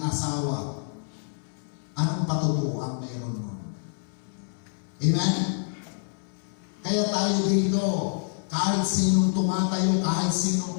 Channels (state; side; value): silent; right; 60 dB below the other